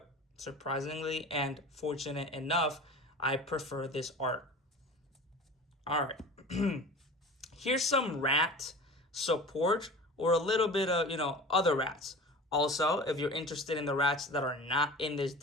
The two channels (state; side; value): normal; both; correlation 0.36